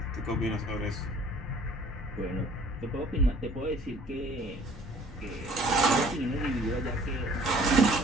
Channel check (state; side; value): normal; both; correlation 0.54